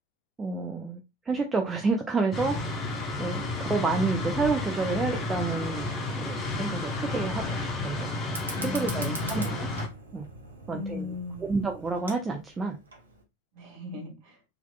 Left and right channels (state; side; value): normal; both; correlation 0.56